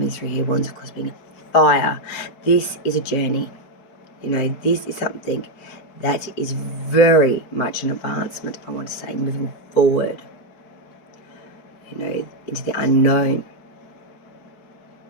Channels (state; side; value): late; right; 4.6 ms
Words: through here. Wands, of course, being fire. This is a journey. You know, this is something that is very much an advancement, I want to say, moving forward, you know, into the unknown.